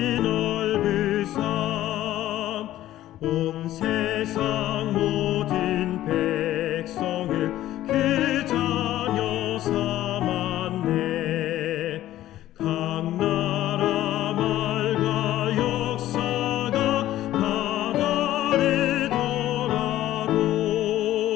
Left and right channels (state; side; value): quieter; right; 13.9 dB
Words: 넓으사 온 세상 모든 백성을 그 자녀 삼았네. 각 나라 말과 역사가 다 다르더라도